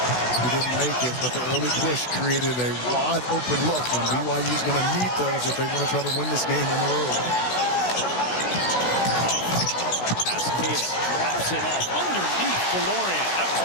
He didn't make it, but the early push created a wide open look, and BYU's going to need those if they want to try to win this game on the road. Pass Keita drops it off underneath the Lorient. That was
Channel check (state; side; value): late; right; 16 ms